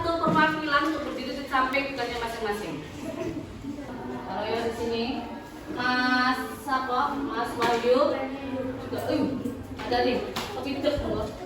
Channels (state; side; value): identical; both; correlation 1.00